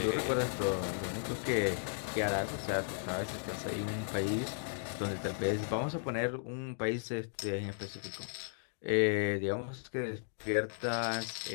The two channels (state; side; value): silent; right; digital silence